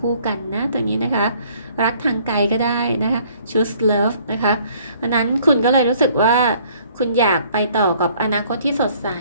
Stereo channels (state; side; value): inverted; both; correlation -0.59